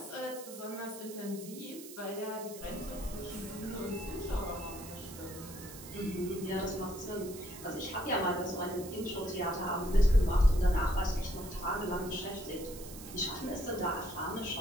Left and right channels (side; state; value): right; noise; hiss, 14 dB below the sound